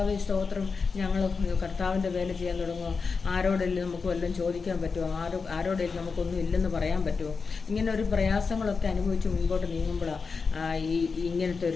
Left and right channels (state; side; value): quieter; right; 4.9 dB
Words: സ്തോത്രം, ഞങ്ങൾ കർത്താവിൻ്റെ വേല ചെയ്യാൻ തുടങ്ങുമോ? ആരോടെങ്കിലും നമുക്ക് വല്ലതും ചോദിക്കാൻ പറ്റുമോ? ആരോടെങ്കിലും നമുക്കൊന്നും ഇല്ലെന്ന് പറയാൻ പറ്റുമോ? ഇങ്ങനെ ഒരു പ്രയാസങ്ങളൊക്കെ അനുഭവിച്ച് മുൻപോട്ട് നീങ്ങുമ്പോഴാണ് ഇങ്ങനത്തെ